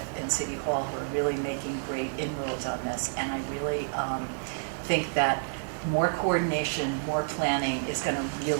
in City Hall who are really making great inroads on this, and I really think that more coordination, more planning is going to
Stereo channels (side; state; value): left; silent; 58 dB below the other